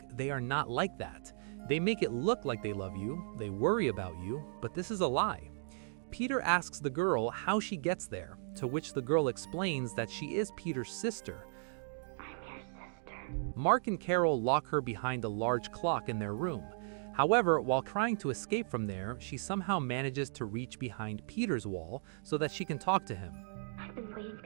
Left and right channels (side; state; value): left; silent; digital silence